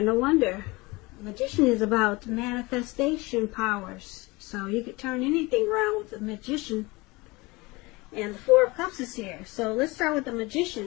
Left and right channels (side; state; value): right; quieter; 23.6 dB